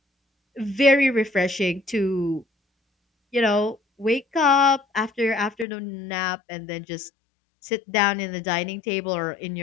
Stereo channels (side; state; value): right; drops out; at 5.7 s